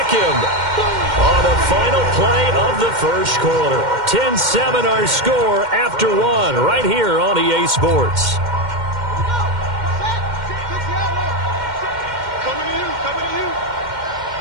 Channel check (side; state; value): left; late; 2.1 ms